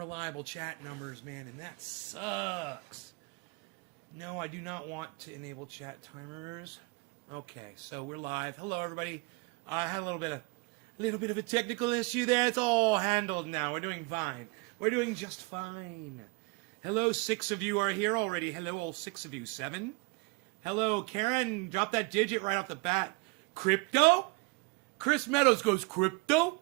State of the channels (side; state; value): left; quieter; 27.7 dB